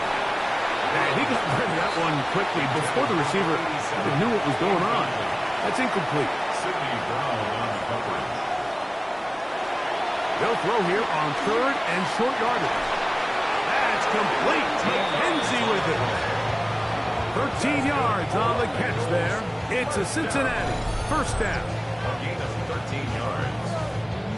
he got rid of that one quickly before the receiver even knew what was going on. That's incomplete. Sidney Brown on the coverage. They'll throw here on third and short yardage. That's complete. McKenzie with it. 13 yards on the catch there. It's a Cincinnati first down. A gain of 13 yards.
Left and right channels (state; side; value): identical; both; correlation 1.00